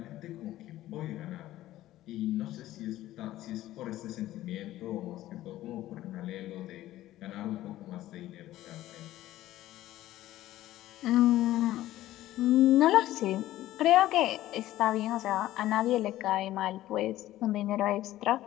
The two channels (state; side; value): quieter; right; 14.8 dB